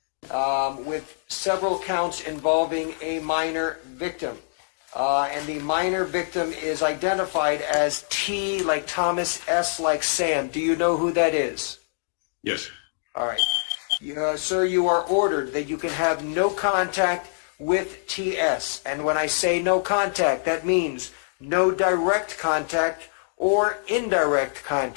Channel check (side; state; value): right; silent; digital silence